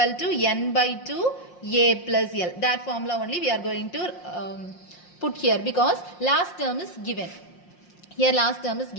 to n by 2 a plus l. That formula only we are going to put here because last term is given. Here last term is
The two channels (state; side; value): late; right; 5.6 ms